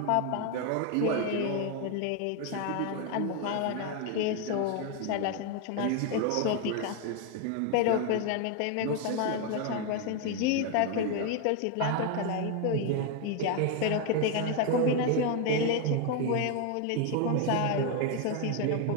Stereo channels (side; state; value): both; different; correlation 0.01